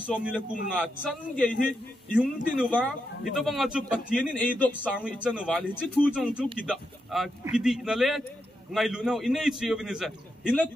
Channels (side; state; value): both; normal; correlation 0.84